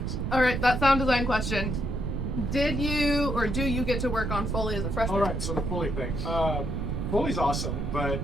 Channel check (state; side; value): noise; right; rumble, 2 dB below the sound